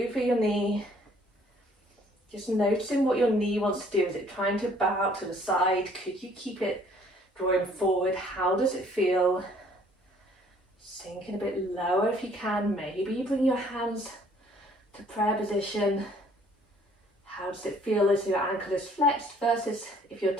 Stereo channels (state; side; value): normal; both; correlation 0.59